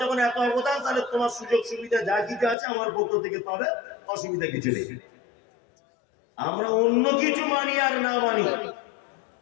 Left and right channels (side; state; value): right; drops out; at 2.6 s